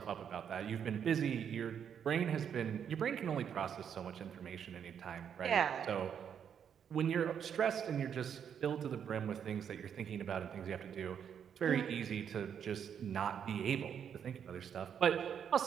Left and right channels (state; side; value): quieter; left; 8.1 dB